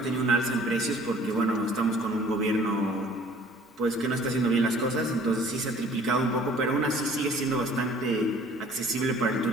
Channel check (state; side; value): normal; both; correlation 0.53